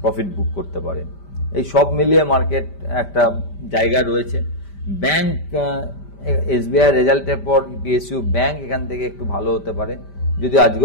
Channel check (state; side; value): late; right; 5.1 ms